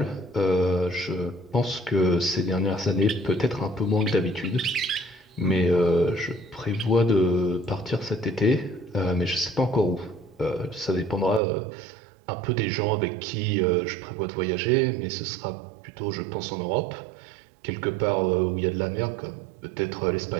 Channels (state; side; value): drops out; left; at 11.4 s